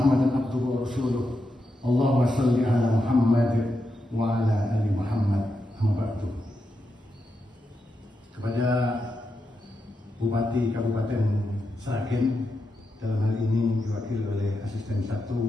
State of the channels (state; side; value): normal; both; correlation 0.86